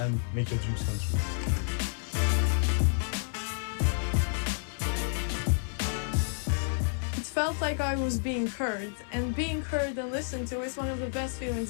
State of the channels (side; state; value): right; silent; 58 dB below the other